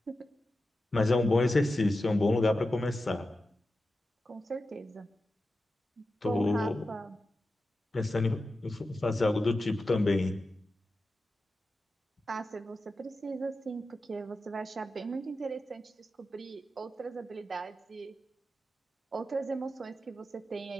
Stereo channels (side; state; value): both; normal; correlation 0.91